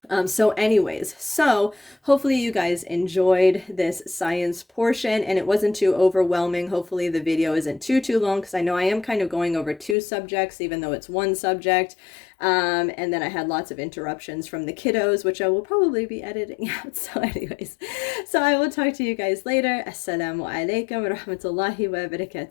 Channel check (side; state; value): right; drops out; at 10.0 s